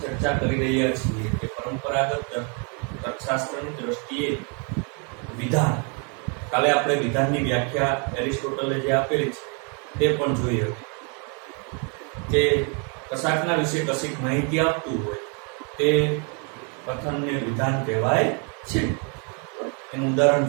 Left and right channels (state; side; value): quieter; left; 36.9 dB